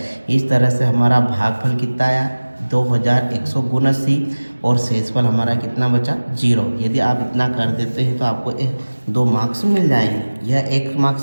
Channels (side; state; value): both; inverted; correlation -1.00